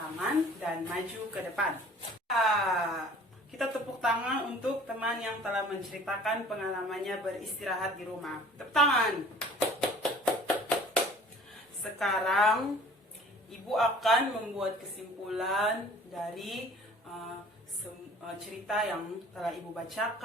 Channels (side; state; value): both; normal; correlation 0.49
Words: dan maju ke depan. Kita tepuk tangan untuk teman yang telah menceritakan pengalamannya beristirahat di rumah. Tepuk tangan. Sekarang Ibu akan membuat kesimpulan dari cerita yang telah Ibu